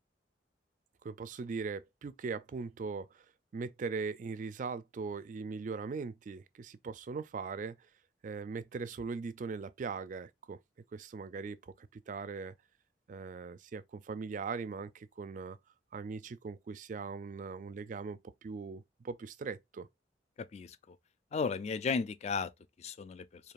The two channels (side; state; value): both; normal; correlation 0.26